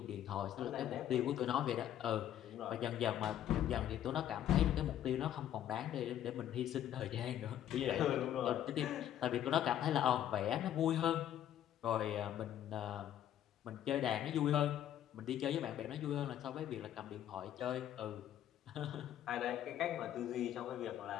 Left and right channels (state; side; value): quieter; right; 11.2 dB